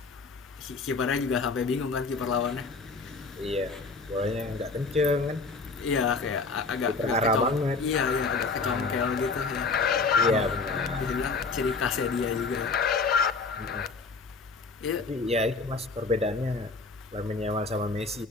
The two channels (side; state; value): right; quieter; 4.1 dB